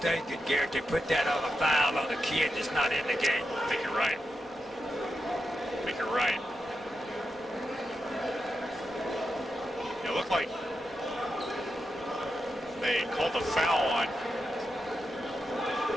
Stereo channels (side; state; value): both; normal; correlation 0.87